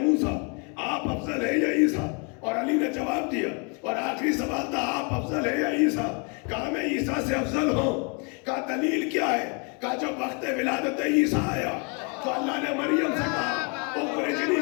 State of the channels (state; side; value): quieter; right; 35.5 dB